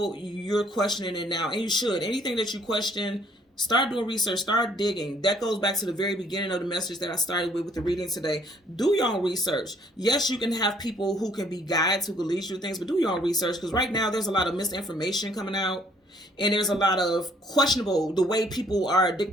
you're questioning it now. And you should. Anything that you question, start doing research, start digging. That goes back to the very beginning of the message that I started with the reading today. Do your own research. Yes, you can have people who can be guides, who can lead you to things, but do your own research, because right now there's a lot of misinformation coming out. And there's a lot of questionable, the way people are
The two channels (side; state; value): both; normal; correlation 0.62